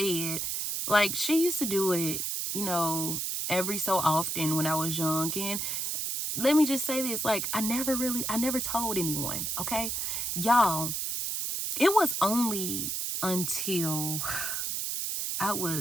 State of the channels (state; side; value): noise; right; hiss, 1 dB below the sound